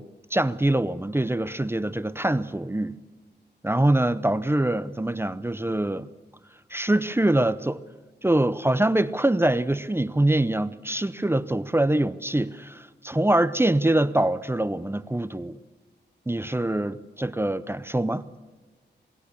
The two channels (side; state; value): both; normal; correlation 0.90